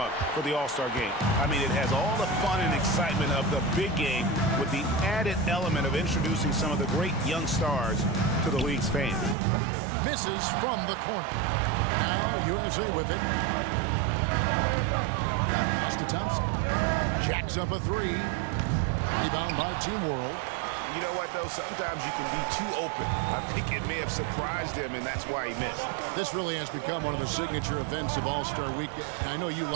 for the All-Star game. I mean, it has all the fun and excitement of the big game with the added element of introducing some of the great young stars to the league's fans. Misses from the corner. Now USA with it. Pass to Thompson. Jacks up a three. Rebound by Team World. You know what, though? Sometimes you can be too open. I think it may have surprised him, and that's why he missed. This really has become one of the signature events of All-Star Week. And I know you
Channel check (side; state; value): left; drops out; at 9.3 s